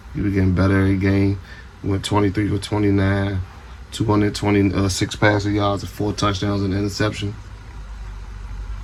He was getting better every game. He went 23 for 29, 226 passing yards and 4 touchdowns and an interception.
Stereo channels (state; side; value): identical; both; correlation 1.00